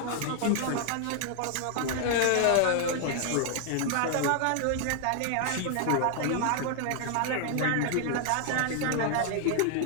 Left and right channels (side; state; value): both; different; correlation 0.00